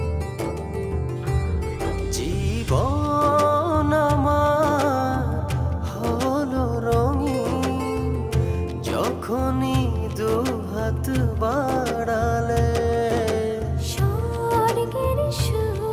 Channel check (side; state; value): both; identical; correlation 1.00